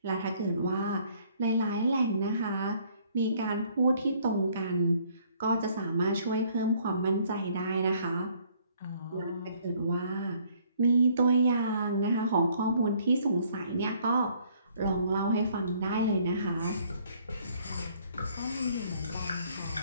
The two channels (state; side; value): inverted; both; correlation -0.62